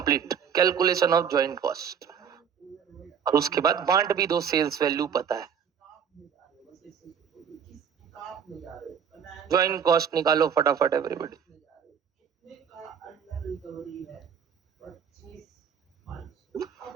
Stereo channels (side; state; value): left; quieter; 7.5 dB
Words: calculation of joint cost. और उसके बाद बांट भी दो, सेल्स वैल्यू पता है। ज्वाइंट कॉस्ट निकालो फटाफट एवरीबॉडी। अब